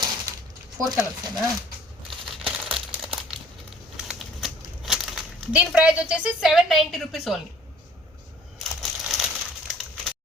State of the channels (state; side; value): normal; both; correlation 0.53